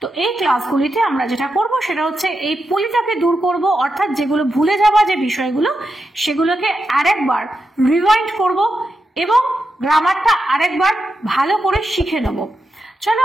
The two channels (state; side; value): normal; both; correlation 0.87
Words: তো এই ক্লাসগুলিতে আমরা যেটা করব সেটা হচ্ছে এই পলিটাকে দূর করব, অর্থাৎ যেগুলো ভুলে যাওয়া যে বিষয়গুলো সেগুলোকে আরেকবার রিভাইন্ড করব এবং গ্রামারটা আরেকবার ভালো করে শিখে নেব। চলো,